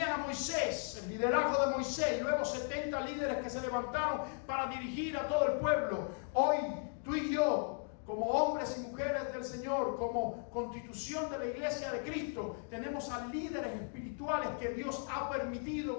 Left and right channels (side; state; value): right; silent; 53 dB below the other